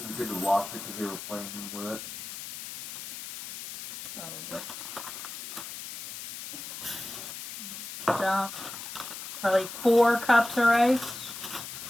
it good to lost it because they were playing with it? probably. Dump probably 4 cups of rice.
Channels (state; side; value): noise; left; hiss, 9 dB below the sound